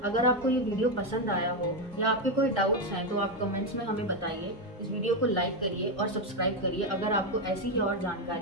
अगर आपको ये वीडियो पसंद आया हो या आपके कोई डाउट्स हैं तो आप कमेंट्स में हमें बताइए। इस वीडियो को लाइक करिए और सब्सक्राइब करिए अगर आपको ऐसी ही और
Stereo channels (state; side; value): normal; both; correlation 0.07